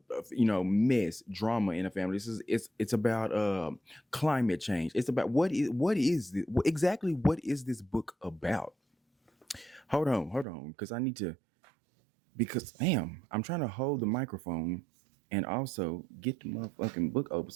mess, drama in a family. It's about climate change. It's about exactly what is this book about? Hold on, because I need to because damn, I'm trying to hold the microphone and also get the motherfucking book open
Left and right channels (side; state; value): left; drops out; at 10.5 s